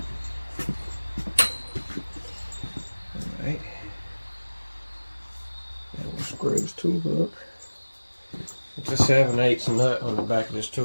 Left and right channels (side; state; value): both; inverted; correlation -1.00